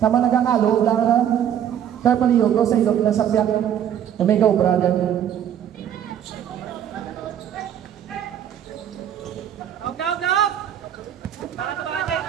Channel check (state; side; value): quieter; left; 9.8 dB